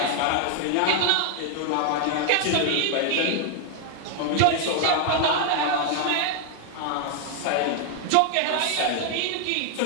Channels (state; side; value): different; both; correlation 0.00